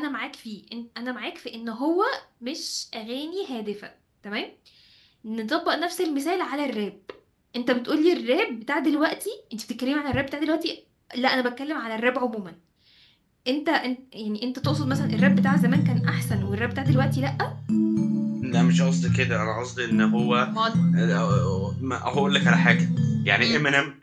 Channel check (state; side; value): identical; both; correlation 1.00